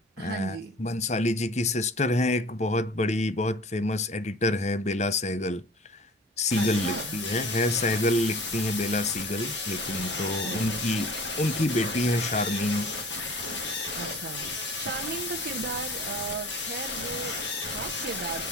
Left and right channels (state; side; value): normal; both; correlation 0.44